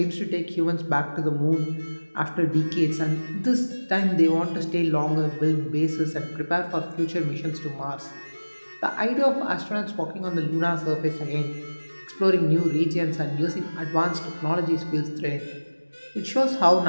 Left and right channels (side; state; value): both; inverted; correlation -1.00